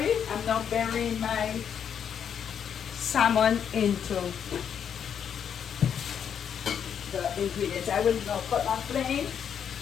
I'm now burying my salmon into the ingredients. I will now cut my flame.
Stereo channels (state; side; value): quieter; right; 8.1 dB